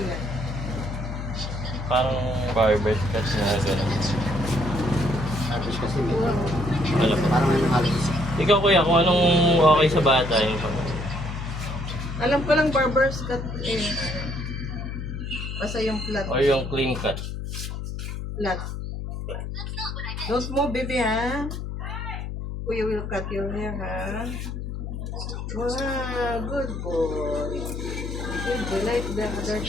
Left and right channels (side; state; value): left; noise; hum, 6 dB below the sound